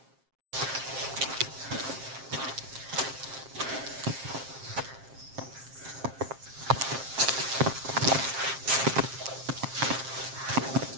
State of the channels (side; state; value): left; late; 7.5 ms